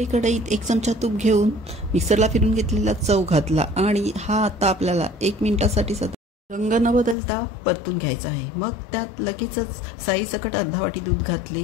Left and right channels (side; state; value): right; drops out; at 7.2 s